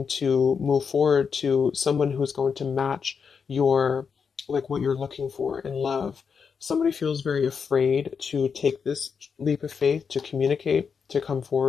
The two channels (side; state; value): right; quieter; 6.1 dB